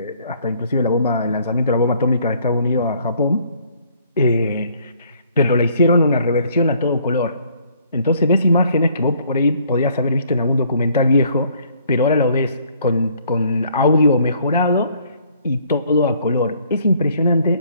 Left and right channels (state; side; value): inverted; both; correlation -0.62